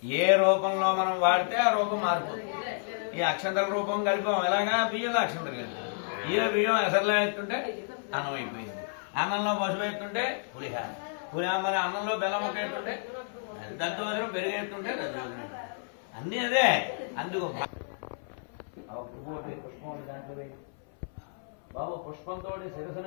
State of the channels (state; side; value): silent; right; 58 dB below the other